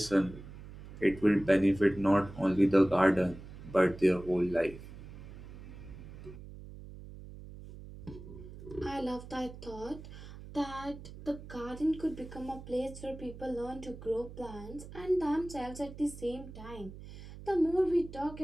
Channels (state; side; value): noise; right; hum, 14 dB below the sound